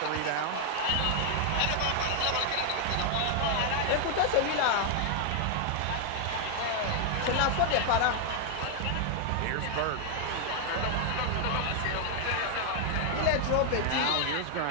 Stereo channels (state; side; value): different; both; correlation 0.00